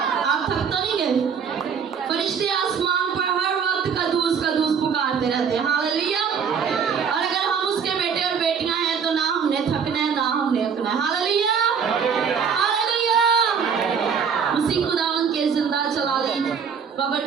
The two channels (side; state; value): left; quieter; 6.6 dB